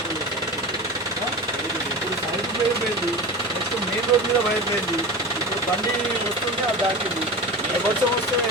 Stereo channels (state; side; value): normal; both; correlation 0.29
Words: ఇప్పుడు సైడ్ వైర్ పోయింది, నెక్స్ట్ మెయిన్ రోడ్ మీద వైర్ పోయింది. ఇప్పుడు బండి వస్తుంటే అది దాటింది. వర్షం వస్తే